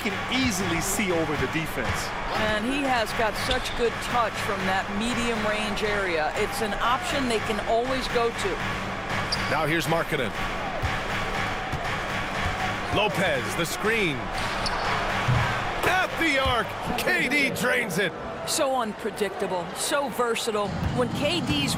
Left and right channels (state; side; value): identical; both; correlation 1.00